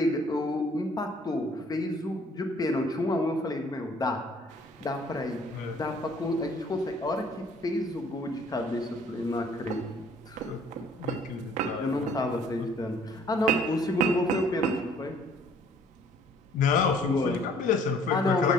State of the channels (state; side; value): normal; both; correlation 0.58